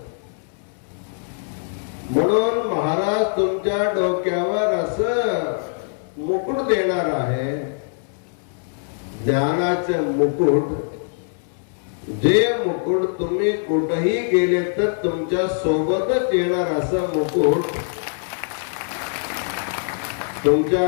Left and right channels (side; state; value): right; silent; 64 dB below the other